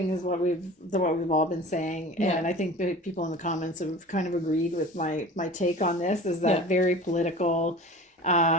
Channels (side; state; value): both; normal; correlation 0.39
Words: as what we've all been saying. Yeah. And I think the people in the comments have kind of agreed with my take on this. Is that very political,